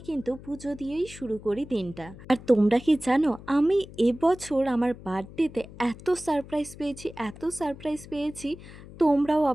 পুজো দিয়েই শুরু করি দিনটা। আর তোমরা কি জানো আমি এবছর আমার বার্থডেতে এত সারপ্রাইজ পেয়েছি, তোমরাও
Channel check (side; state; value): left; noise; hum, 17 dB below the sound